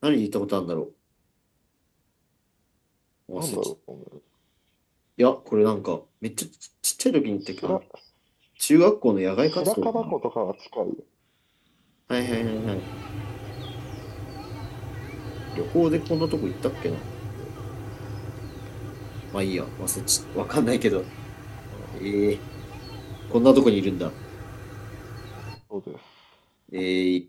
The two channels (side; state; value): both; identical; correlation 1.00